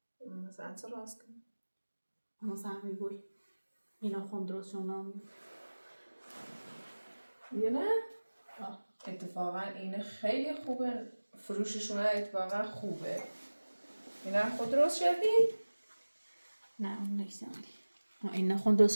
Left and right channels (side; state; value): both; inverted; correlation -1.00